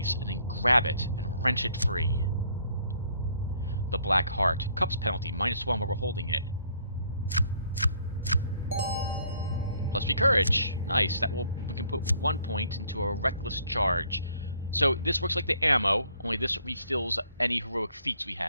and then grab it and wrench it free. The black heart. Cups penalty, -1 while we're holding it. +3 courage. Nice. We can put 1 point into a reckless charge. So this works like the ammo, only this refills any heroic feats we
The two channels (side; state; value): both; inverted; correlation -0.64